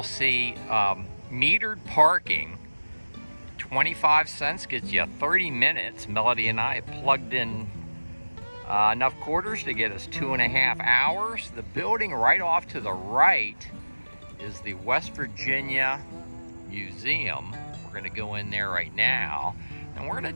see metered parking. 25 cents gets you 30 minutes. Melody and I plugged in enough quarters to get us 2.5 hours. The building right off to the right is the West Virginia Museum. We're going to go in there right now, and we're going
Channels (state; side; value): inverted; both; correlation -1.00